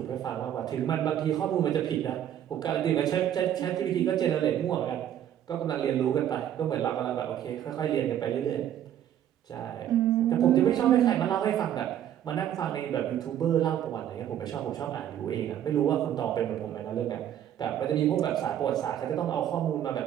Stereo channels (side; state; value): left; quieter; 10.7 dB